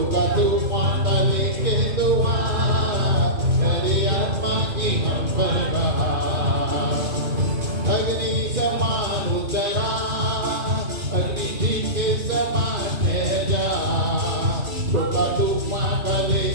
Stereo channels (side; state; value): left; late; 2.5 ms